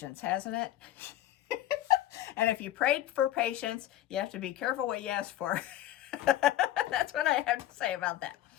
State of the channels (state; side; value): quieter; right; 13.3 dB